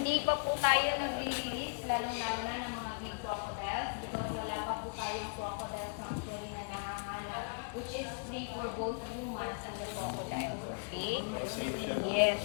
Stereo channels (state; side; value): quieter; right; 38.3 dB